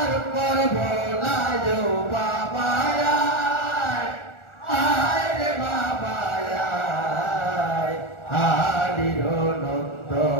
করব লাজ বাবা আয় রে বাবা আয় আলীর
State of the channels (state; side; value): late; right; 1.4 ms